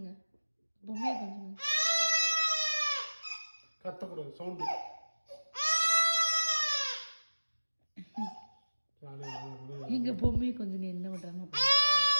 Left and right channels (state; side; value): inverted; both; correlation -1.00